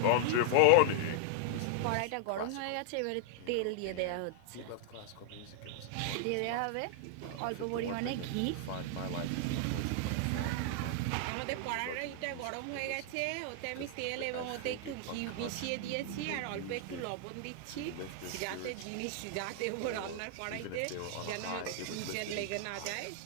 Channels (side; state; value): both; different; correlation -0.01